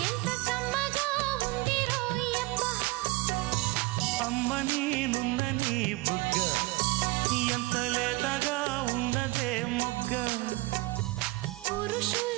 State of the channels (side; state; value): left; quieter; 22.0 dB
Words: ఎంత కమ్మగా ఉంది రోయప్ప అమ్మ నేనున్న నీ బుగ్గ ఎంత లేత